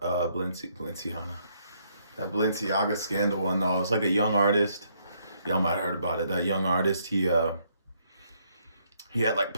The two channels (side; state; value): both; inverted; correlation -0.72